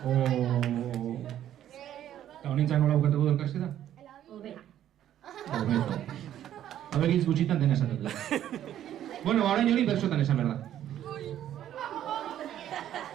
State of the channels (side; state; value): left; quieter; 11.4 dB